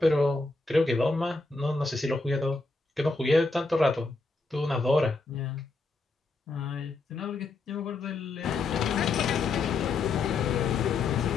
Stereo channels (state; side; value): quieter; right; 3.6 dB